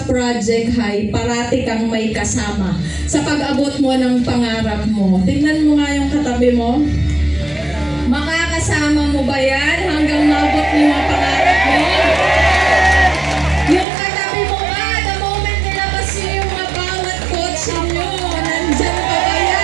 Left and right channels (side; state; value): left; drops out; at 13.9 s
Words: Project High, parati kang may kasama sa pag-abot mo ng pangarap mo. Tingnan mo nga yung katabi mo. Makakasama mo ba yan hanggang mabot mo yung pangarap mo? Yung katabi mo nga, the moment nilabas nyo yung mga bawat kotse nyo, nandyan pa ba